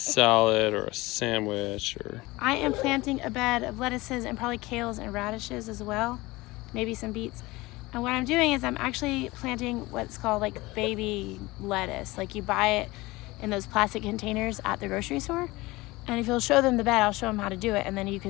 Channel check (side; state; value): right; quieter; 21.0 dB